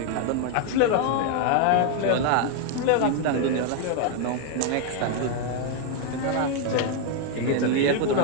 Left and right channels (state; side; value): different; both; correlation 0.01